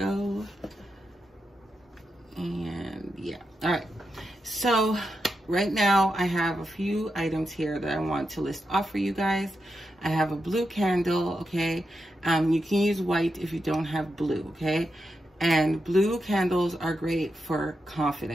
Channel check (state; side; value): normal; both; correlation 0.87